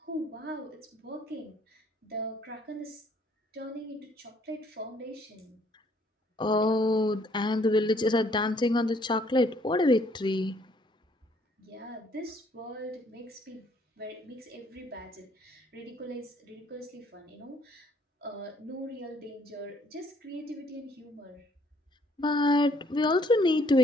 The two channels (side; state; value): both; normal; correlation 0.64